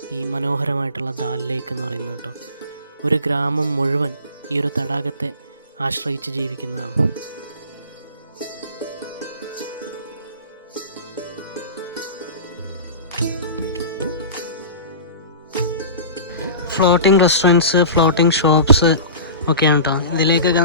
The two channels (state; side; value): inverted; both; correlation -0.35